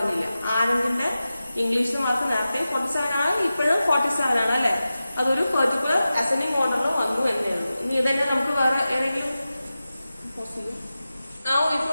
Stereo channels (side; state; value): both; inverted; correlation -0.94